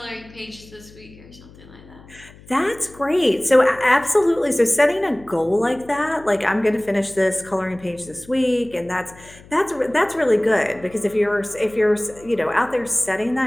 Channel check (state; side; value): noise; left; hum, 22 dB below the sound